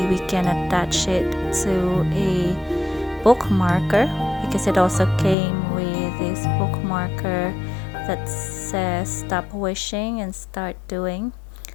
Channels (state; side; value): drops out; right; at 5.4 s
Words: we can attach it to a bookmarker, because it also came with this bookmarker that says stop wishing and start doing.